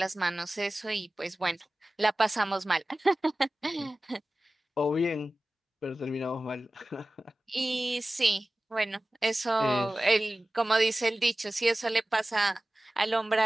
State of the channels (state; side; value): normal; both; correlation 0.97